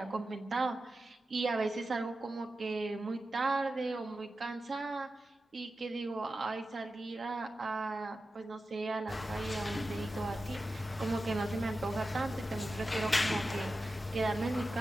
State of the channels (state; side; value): normal; both; correlation 0.92